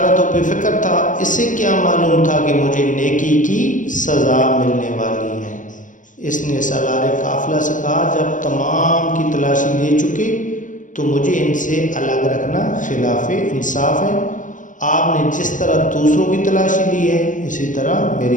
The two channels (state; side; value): late; right; 0.37 ms